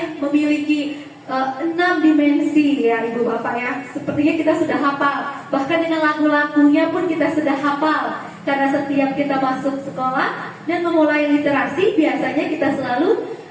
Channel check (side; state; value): both; identical; correlation 1.00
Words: memiliki 6 dimensi ya Ibu Bapak ya. Sepertinya kita sudah hafal. Bahkan dengan lagu-lagunya pun kita sudah hafal. Karena setiap kita masuk sekolah dan memulai literasi, biasanya kita selalu